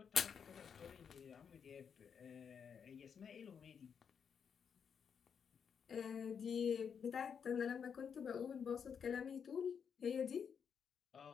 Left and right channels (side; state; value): right; quieter; 7.0 dB